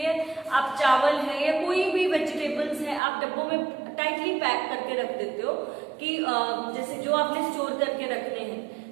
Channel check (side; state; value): left; drops out; at 3.0 s